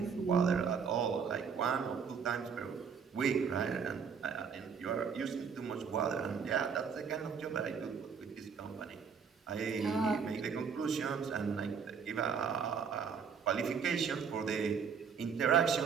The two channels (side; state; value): left; quieter; 6.4 dB